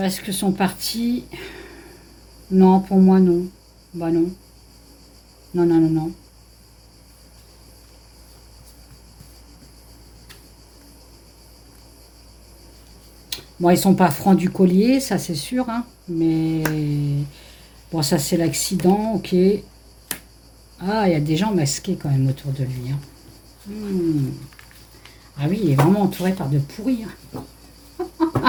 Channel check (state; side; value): identical; both; correlation 1.00